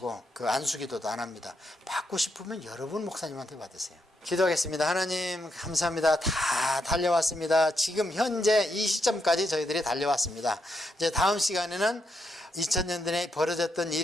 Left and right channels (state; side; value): normal; both; correlation 0.80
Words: 그 안수기도도 안 합니다. 받고 싶으면 여러분 목사님한테 받으세요. 기도하겠습니다. 하나님 감사합니다. 다 달려왔습니다. 지금 현재 이 시점까지 저희들이 달려왔습니다. 이제 다음 시간에는 2000년대에 벌어졌던